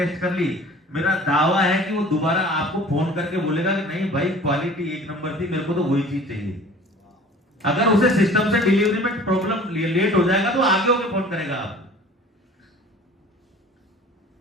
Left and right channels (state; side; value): normal; both; correlation 0.46